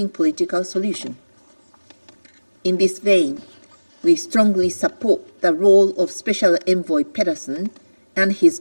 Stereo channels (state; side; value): inverted; both; correlation -1.00